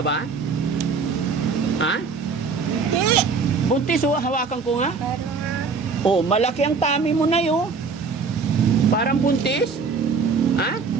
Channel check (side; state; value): left; quieter; 5.0 dB